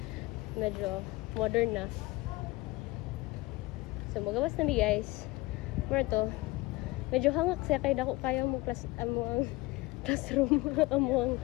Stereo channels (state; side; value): quieter; right; 21.5 dB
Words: Medyo modern na. So magawas na mi guys. Mura to. Medyo hangak siya kay dako kaya mo ang classroom, amo